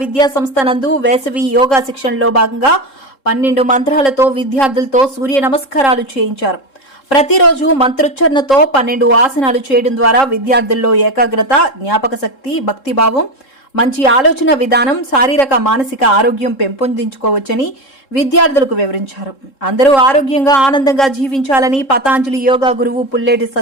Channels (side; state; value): right; late; 3.7 ms